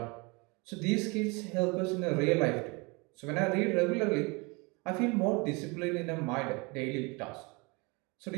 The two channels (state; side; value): quieter; left; 28.1 dB